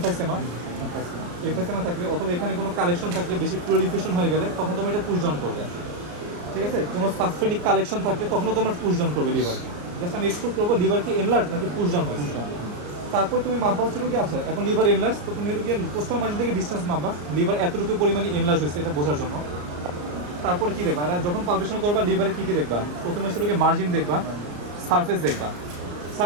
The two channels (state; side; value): late; left; 34 ms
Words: থাকলে, অথবা এখানে কোনো কালেকশন থাকলে, বেশি প্লোরিফিকেশন হয়ে গেলে তখন তোমার এটা পুশ ডাউন করবে, ঠিক আছে। কোনো সাবফেনিক কালেকশন থাকলে তখনও তোমার পুশ ডাউন করবে লিভারকে। জাস্ট আমি এক্সপ্লোর করবো লিভার কি এনলার্জ নাকি পুশ ডাউন হয়েছে। তারপর তুমি মাপা হচ্ছে কি আছে, এখন লিভার এনলার্জ, তো তুমি গিয়ে পোস্টাল মার্জিন থেকে ডিস্টেন্স মাপবা, লিভার এতটুকু পরিমাণে এনলার্জ হয়েছে এটা বোঝার জন্য। তারপরে কী দেখবা, আর যখন পালপেশন করবা লিভারে কী কী দেখবা? প্রথমে হচ্ছে মার্জিন দেখবা, সারফেস দেখবা।